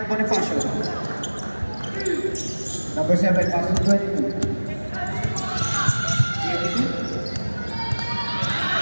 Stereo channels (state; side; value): inverted; both; correlation -1.00